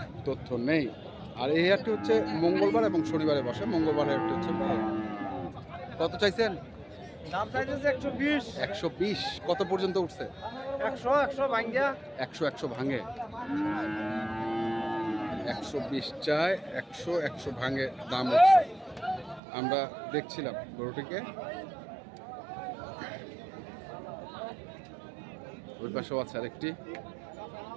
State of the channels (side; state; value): left; drops out; at 19.4 s